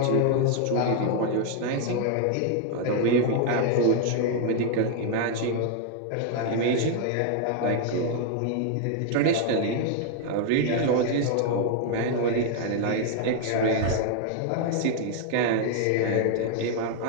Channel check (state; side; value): different; both; correlation 0.00